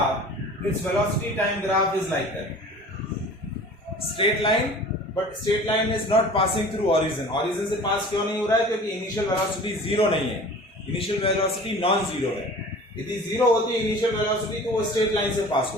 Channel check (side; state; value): both; normal; correlation 0.43